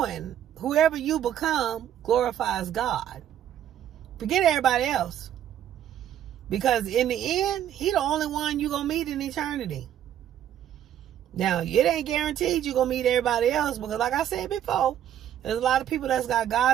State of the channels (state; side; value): quieter; left; 10.7 dB